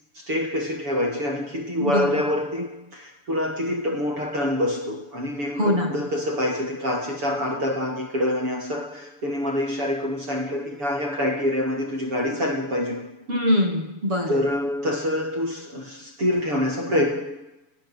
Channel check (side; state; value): left; late; 7.0 ms